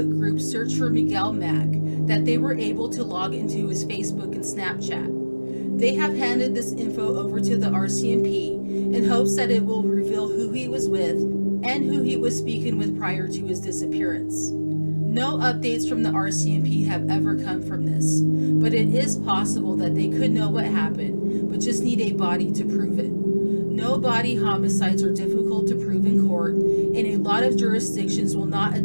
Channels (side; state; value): both; inverted; correlation -1.00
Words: group Search for Miguel Mack that they were able to log into his Facebook and Snapchat. They have handed this info over to the RCMP in hopes that it will reveal who he was with and who he was speaking with prior to his disappearance. No updates from the RCMP have ever come from this, but it is possible that they could know what happened, but just need a body to prove it. No body homicides are difficult to prove in court, and a lot of jurisdictions will not